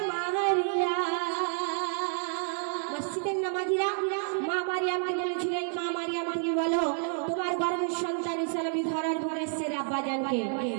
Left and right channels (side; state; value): left; silent; digital silence